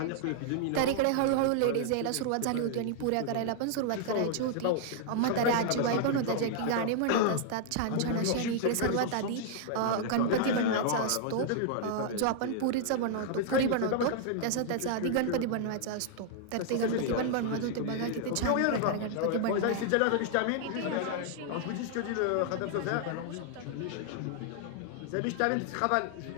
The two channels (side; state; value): both; different; correlation -0.01